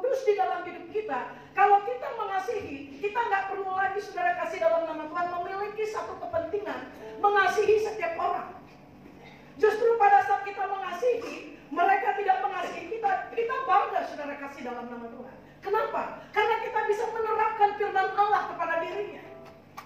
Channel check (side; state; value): both; identical; correlation 1.00